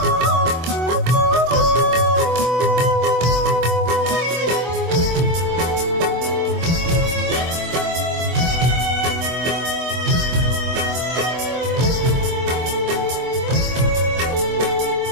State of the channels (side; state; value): left; late; 24 ms